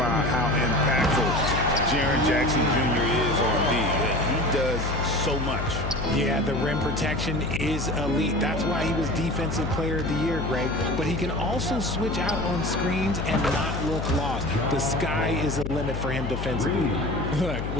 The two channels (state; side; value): noise; left; hum, 4 dB below the sound